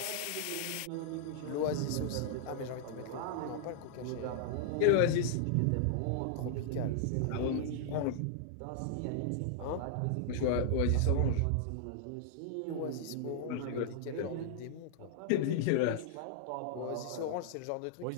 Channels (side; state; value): both; different; correlation -0.01